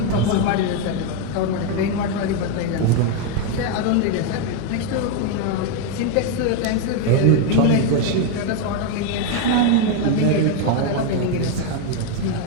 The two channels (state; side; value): different; both; correlation 0.01